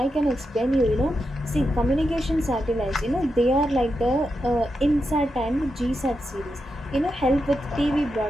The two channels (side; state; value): both; normal; correlation 0.86